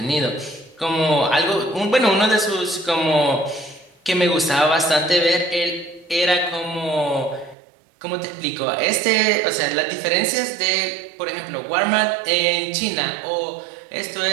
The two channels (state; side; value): drops out; left; at 7.6 s